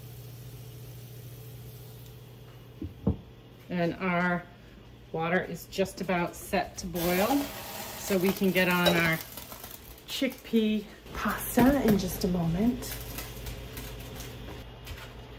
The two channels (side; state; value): both; identical; correlation 1.00